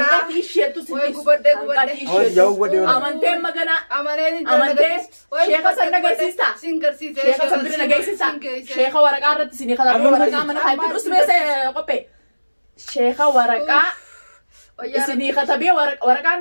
تيشيتو Jauh buat dia. أمانتين مجانا أمانتين شيخة سنة جيسيستا شيخة سنة جيسيستا شيخة ورقة رت سني خلاص ورقة من هاي بس بس قبي شيخة ورقة سني خطبي ورقة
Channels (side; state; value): both; inverted; correlation -1.00